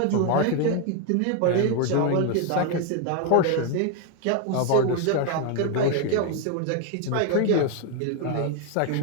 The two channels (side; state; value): both; different; correlation 0.01